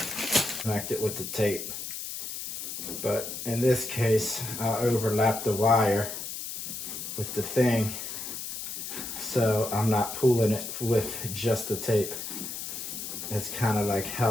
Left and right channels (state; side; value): noise; left; hiss, 7 dB below the sound